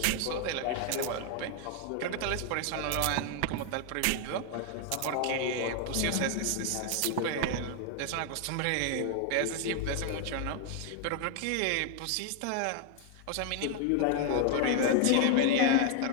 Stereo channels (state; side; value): different; both; correlation 0.00